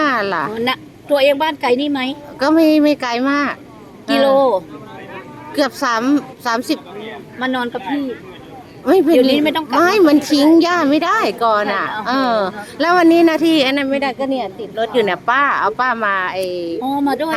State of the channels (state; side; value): identical; both; correlation 1.00